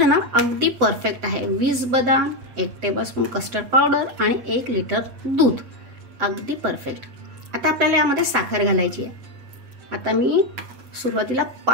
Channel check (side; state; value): left; late; 7.9 ms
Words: ना अगदी परफेक्ट आहे. 20 बदाम, 1 टेबलस्पून कस्टर्ड पावडर आणि 1 लिटर दूध, अगदी परफेक्ट. आता आपल्याला यामध्ये साखर घालायची आहे. आता मी सुरुवातीला